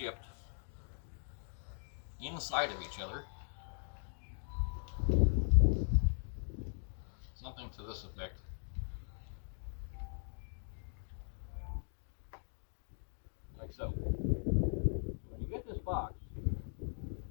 inside of each other. Something to this effect. Like so. When you get this box,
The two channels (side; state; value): right; silent; digital silence